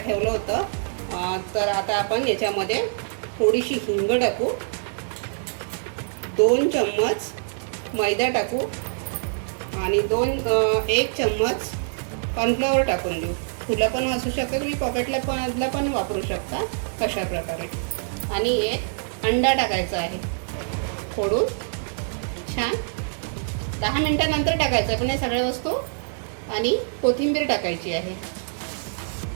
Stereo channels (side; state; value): left; silent; digital silence